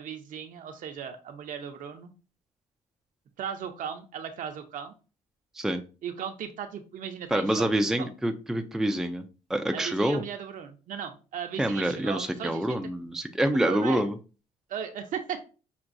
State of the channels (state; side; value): normal; both; correlation 0.81